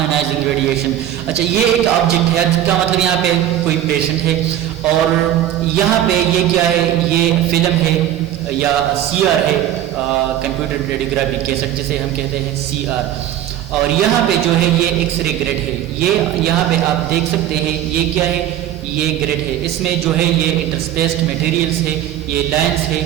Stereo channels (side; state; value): left; quieter; 11.7 dB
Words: radiation. اچھا, یہ ایک آبجیکٹ ہے جس کا مطلب یہاں پہ کوئی پیشنٹ ہے, اور یہاں پہ یہ کیا ہے؟ یہ فلم ہے یا سی آر ہے, کمپیوٹر ریڈیوگرافی کیسٹ جسے ہم کہتے ہیں سی آر. اور یہاں پہ جو ہے یہ ایکس رے گریڈ ہے. یہ یہاں پہ آپ دیکھ سکتے ہیں یہ کیا ہے؟ یہ گریڈ ہے. اس میں جو ہے یہ انٹرسپیسڈ میٹیریلز ہے, یہ لائنس ہے,